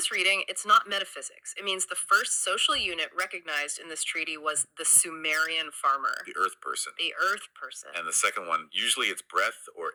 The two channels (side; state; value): both; identical; correlation 1.00